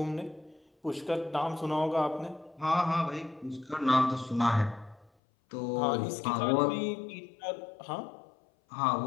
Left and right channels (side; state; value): right; drops out; at 5.1 s